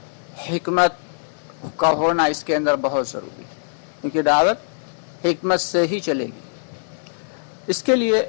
حکمت کا ہونا اس کے اندر بہت ضروری ہے، کیونکہ دعوت حکمت سے ہی چلے گی۔ اس کے لیے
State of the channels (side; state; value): right; silent; digital silence